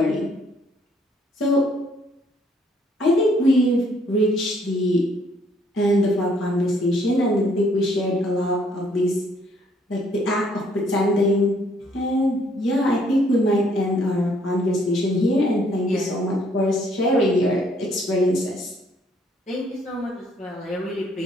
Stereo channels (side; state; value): both; normal; correlation 0.66